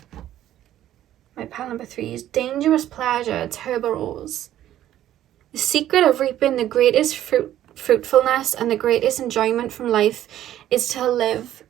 My pal number 3 is dangerous pleasure, tuberose. The secret of reaping the greatest fruitfulness and the greatest enjoyment from life is to live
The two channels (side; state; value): left; quieter; 12.4 dB